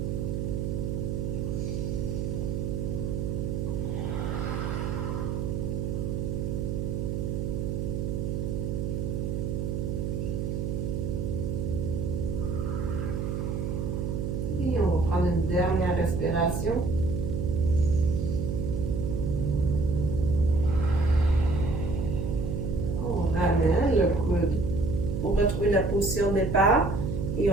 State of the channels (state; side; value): noise; right; hum, 1 dB below the sound